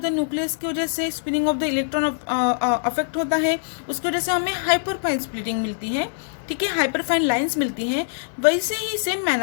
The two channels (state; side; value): silent; right; 63 dB below the other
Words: द न्यूक्लियस की वजह से spinning of the electron affect होता है, उसकी वजह से हमें हाइपरफाइन स्प्लिटिंग मिलती है. ठीक है, हाइपरफाइन लाइंस मिलती हैं. वैसे ही सेम